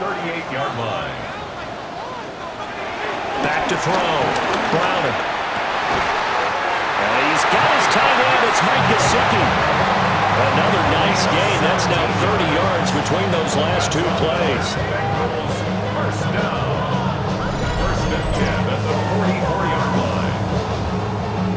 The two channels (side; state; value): both; identical; correlation 1.00